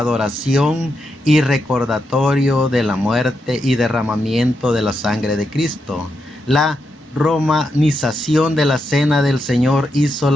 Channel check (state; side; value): normal; both; correlation 0.84